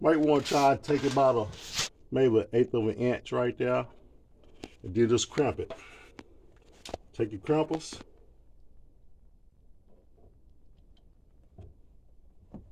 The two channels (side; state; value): both; identical; correlation 1.00